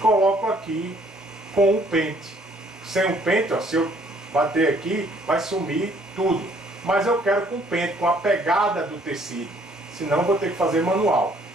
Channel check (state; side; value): normal; both; correlation 0.62